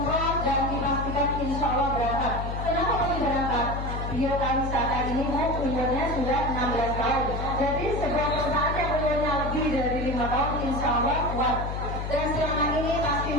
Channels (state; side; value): noise; left; hum, 4 dB below the sound